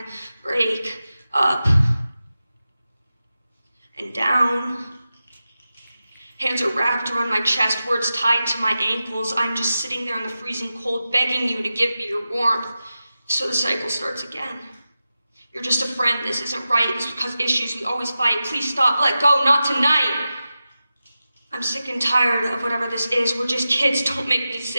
break. Up and down. Hands are wrapped around my chest, words tied to my ankles. I'm just sitting there in the freezing cold, begging you to give me your warmth. So the cycle starts again. You're just a friend. This isn't right. This will cause issues. We always fight. Please stop. Let go. Not tonight. I'm sick and tired of whatever this is. We're just kids. Don't make me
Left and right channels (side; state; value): both; inverted; correlation -0.93